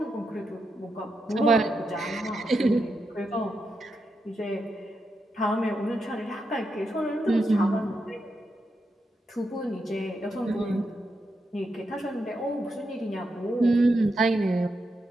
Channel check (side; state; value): both; normal; correlation 0.85